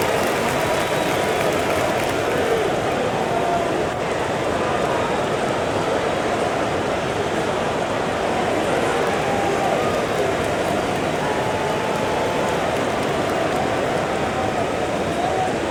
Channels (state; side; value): identical; both; correlation 1.00